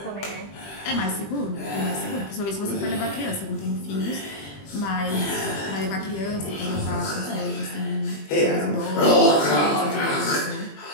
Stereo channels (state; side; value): late; right; 20 ms